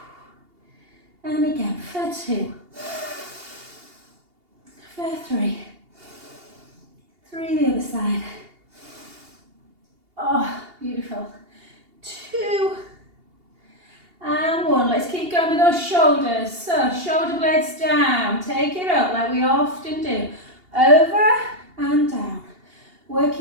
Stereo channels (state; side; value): late; left; 2.8 ms